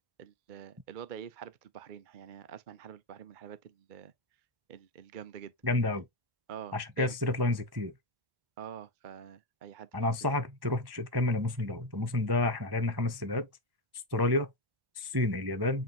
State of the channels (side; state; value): left; late; 1.1 ms